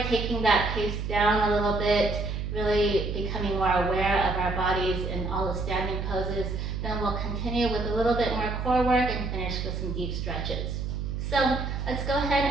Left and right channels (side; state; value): right; noise; hum, 3 dB below the sound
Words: taking that pace down a little bit, really becoming more aware of our bodies in all the standing poses. Then we'll continue with a little bit more core work and finish with some deep stretches. So let's go